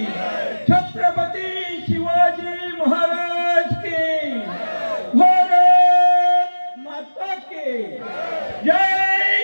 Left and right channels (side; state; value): both; inverted; correlation -1.00